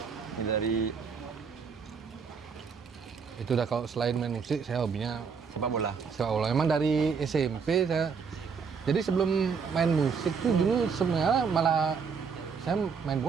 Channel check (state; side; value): quieter; left; 5.9 dB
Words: Ini dari Itu udah kalau selain main musik, saya hobinya sepak bola. sepak bola. Memang dari SMP saya. Jadi sebelum main musik tuh dulu sebenarnya malah saya main